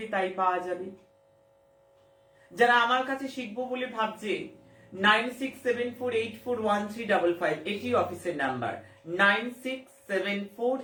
তাই পাওয়া যাবে। যারা আমার কাছে শিখবো বলে ভাবছে, 9674841355 এটি অফিসের নাম্বার।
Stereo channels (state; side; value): identical; both; correlation 1.00